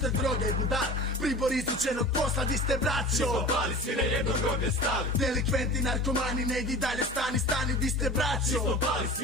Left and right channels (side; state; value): both; normal; correlation 0.37